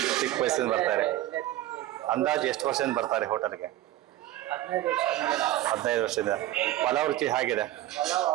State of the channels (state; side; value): quieter; left; 14.7 dB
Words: ಚಿಕ್ಕ ವಯಸ್ಸಿಂದ ಬರ್ತಾರೆ. ಅಂದಾಜು ಎಷ್ಟು ವರ್ಷದಿಂದ ಬರ್ತಾರೆ ಹೋಟೆಲ್ಗೆ? 15 ವರ್ಷದಿಂದ. ಪಲಾವ್ ರುಚಿ ಹೇಗಿದೆ?